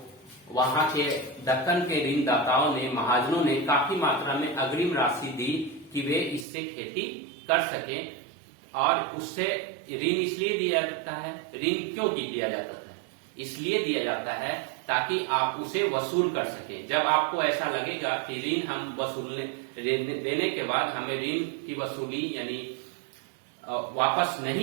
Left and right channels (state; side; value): drops out; left; at 6.5 s